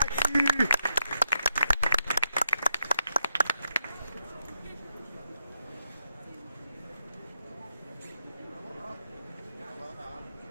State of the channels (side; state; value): both; inverted; correlation -0.84